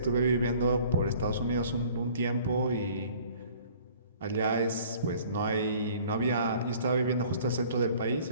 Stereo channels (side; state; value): both; inverted; correlation -0.53